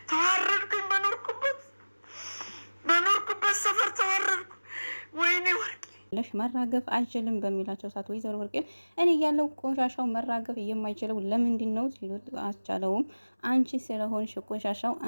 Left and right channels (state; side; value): inverted; both; correlation -1.00